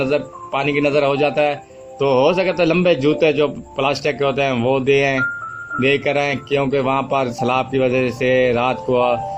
की नज़र हो जाता है। तो हो सके तो लंबे जूते जो प्लास्टिक के होते हैं वो दे कर आएँ क्योंकि वहाँ पर सलाब की वजह से रात को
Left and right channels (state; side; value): identical; both; correlation 1.00